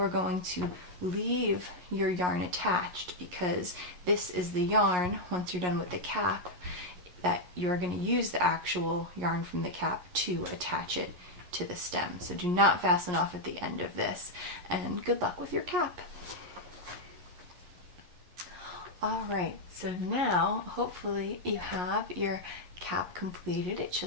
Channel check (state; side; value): late; left; 11 ms